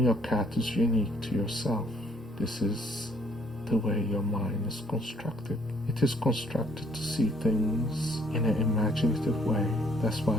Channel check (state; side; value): normal; both; correlation 0.63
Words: your cat is unique to yourself. This is the way your mind is constructed. It is constructed to see things in an imaginative way. That's